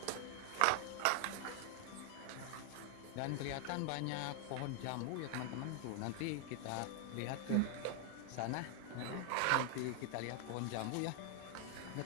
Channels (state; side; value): different; both; correlation 0.00